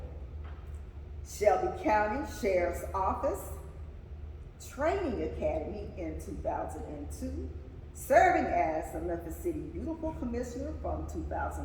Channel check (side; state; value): both; identical; correlation 1.00